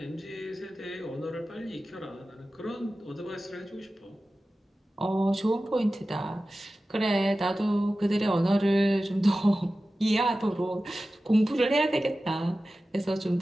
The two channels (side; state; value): both; normal; correlation 0.95